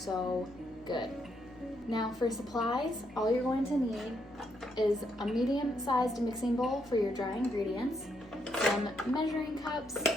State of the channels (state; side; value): normal; both; correlation 0.77